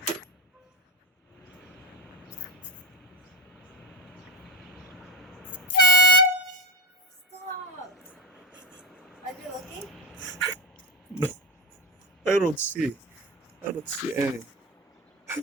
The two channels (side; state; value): both; normal; correlation 0.16